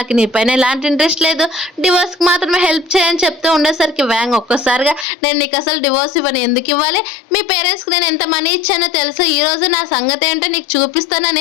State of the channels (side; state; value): right; drops out; at 5.1 s